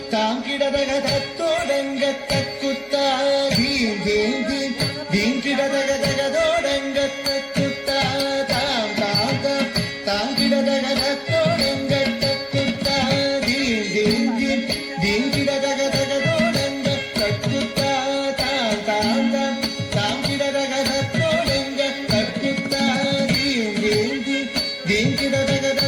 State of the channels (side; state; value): both; identical; correlation 1.00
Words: താങ്കിടതക തത്തോടങ്ക തക്കുത്ത ധീം ധീം ധീം ധീം കിടതക തകതോടങ്ക തക്കുത്ത താം താം താം താങ്കിടതക തത്തോടങ്ക തക്കുത്ത ധീം ധീം ധീം ധീം കിടതക തകതോടങ്ക തക്കുത്ത താം താം താം താങ്കിടതക തത്തോടങ്ക തക്കുത്ത ധീം ധീം ധീം ധീം കിടതക